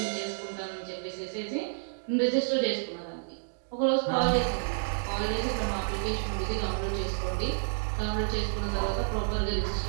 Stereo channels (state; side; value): silent; left; digital silence